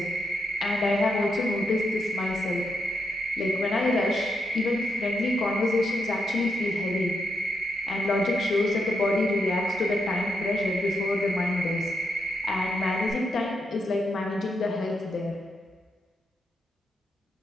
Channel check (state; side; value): normal; both; correlation 0.82